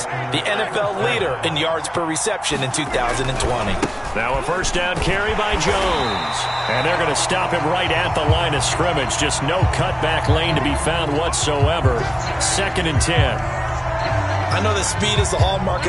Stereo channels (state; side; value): identical; both; correlation 1.00